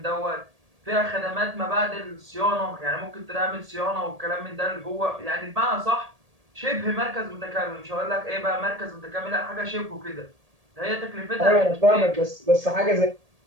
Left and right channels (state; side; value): late; left; 1.8 ms